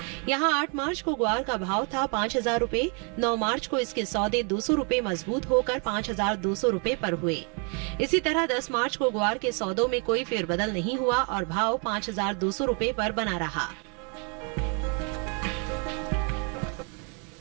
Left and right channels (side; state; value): left; quieter; 34.6 dB